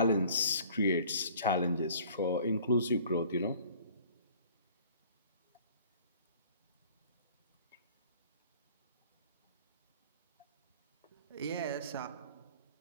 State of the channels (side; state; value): both; inverted; correlation -0.51